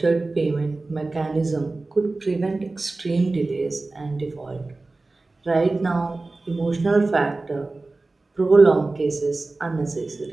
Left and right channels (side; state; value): left; quieter; 3.3 dB